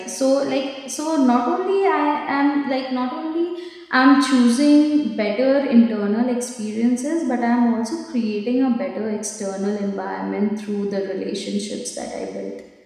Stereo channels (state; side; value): identical; both; correlation 1.00